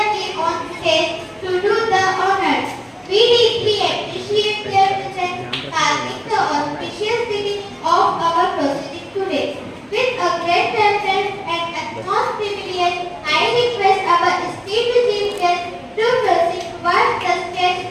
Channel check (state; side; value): identical; both; correlation 1.00